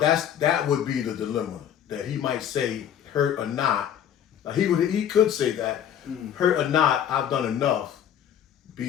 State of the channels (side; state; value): right; quieter; 9.5 dB